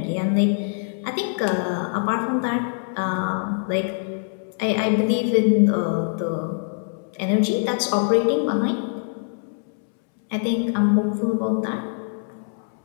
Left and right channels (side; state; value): right; silent; 63 dB below the other